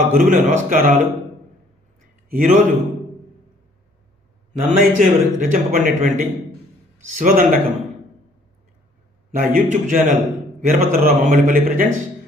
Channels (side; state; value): both; normal; correlation 0.60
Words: గురువులకు నమస్కారాలు. ఈరోజు నన్నయ్యచే రచింపబడినటువంటి శివదండకం నా YouTube channel Veerabhadrarao Mammallnipalli presents.